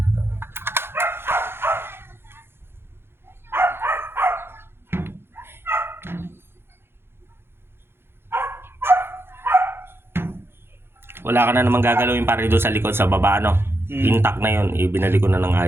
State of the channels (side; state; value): left; late; 0.11 ms